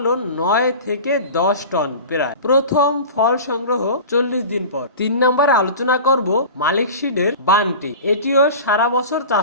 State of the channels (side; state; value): both; inverted; correlation -0.35